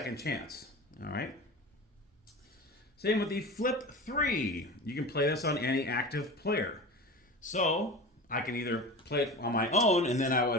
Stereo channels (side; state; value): both; normal; correlation 0.31